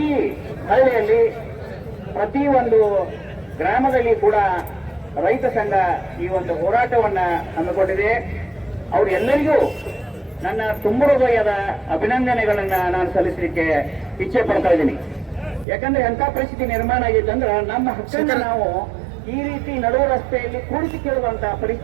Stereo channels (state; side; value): drops out; left; at 15.7 s